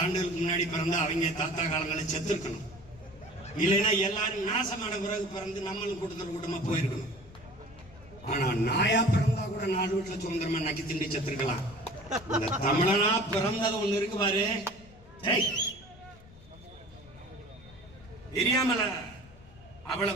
முன்னாடி பிறந்த அவங்க தாத்தா காலங்களை செத்துருக்கணும். இல்லைன்னா எல்லாரும் நாசமான பிறகு பிறந்து நம்மளும் கூட்டமா போயிருக்கணும். ஆனா நாயா பிறந்தா கூட 4 வீட்டுல சுதந்திரமா நக்கி திண்டி செத்துருக்கலாம். இந்த தமிழனா பிறந்தது ஒண்ணு இருக்கு பாரு, தெரியாமல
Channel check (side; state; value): left; noise; rumble, 22 dB below the sound